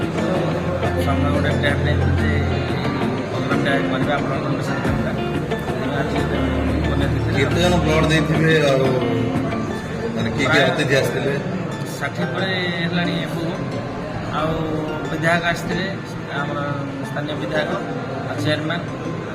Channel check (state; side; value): identical; both; correlation 1.00